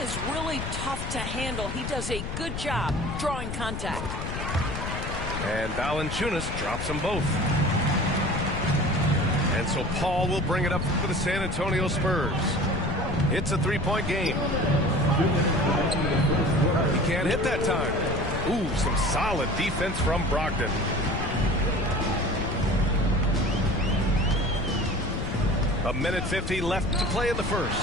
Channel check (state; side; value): noise; left; rumble, 5 dB below the sound